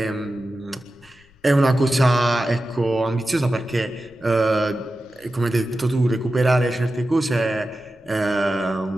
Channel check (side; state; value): left; noise; rumble, 30 dB below the sound